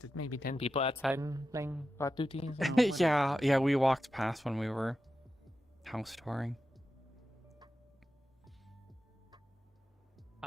maybe 10 people outside and playing guard duties. Yeah, we walked past when we were house touring.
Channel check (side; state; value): both; normal; correlation 0.90